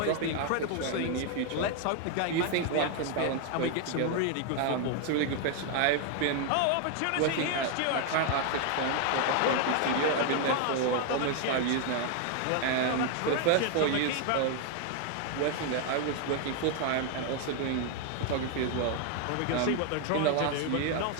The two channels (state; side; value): different; both; correlation 0.00